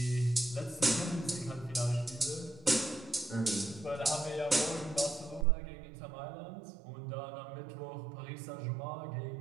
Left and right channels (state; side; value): drops out; left; at 5.5 s